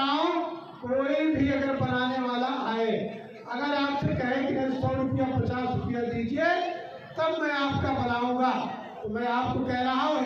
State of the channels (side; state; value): both; identical; correlation 1.00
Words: हूँ, कोई भी अगर बनाने वाला आए, अगर आपसे कहे कि 100 रुपया 50 रुपया दीजिए तब मैं आपका बनाऊंगा, तो मैं आपको कह रहा हूँ